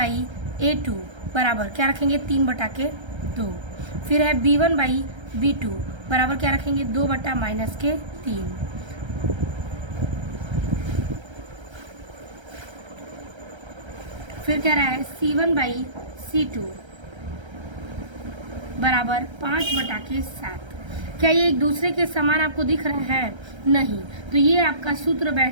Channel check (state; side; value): late; left; 1.3 ms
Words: a2 बराबर क्या रखेंगे, 3/2। फिर है b1 बाई b2 बराबर क्या रखेंगे, 2 बटा -3। फिर कह रहा है c1 बाई c2 बराबर 5/7। क्या ये एक दूसरे के समान आपको दिख रहा है, नहीं। तो ये आपका सूत्र